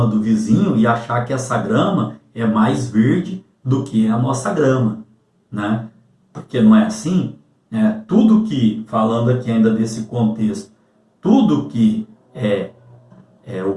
do vizinho e achar que essa grama é mais verde do que a nossa grama, Porque não é assim? Tudo que, falando aqui ainda desse contexto, tudo que o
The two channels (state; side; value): identical; both; correlation 1.00